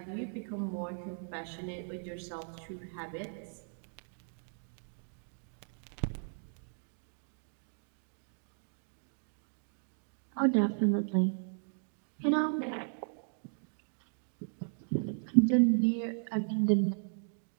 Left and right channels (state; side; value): silent; left; 54 dB below the other